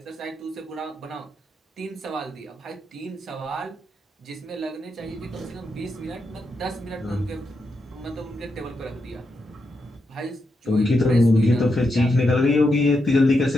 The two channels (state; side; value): normal; both; correlation 0.84